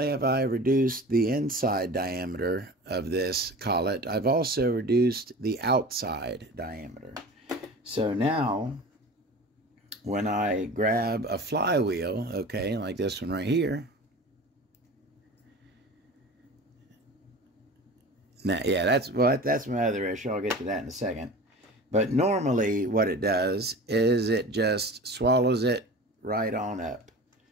have I reduced the inside diameter of this collet, I've also reduced the outside diameter. So now when I grab a flywheel, okay, like this one right here. Now, yeah, that's my other issue. I'll get to that in a second. But normally what it does is it just swallows it right on up.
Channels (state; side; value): normal; both; correlation 0.37